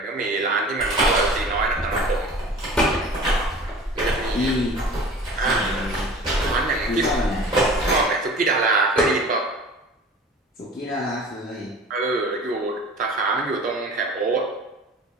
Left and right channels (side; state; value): both; normal; correlation 0.42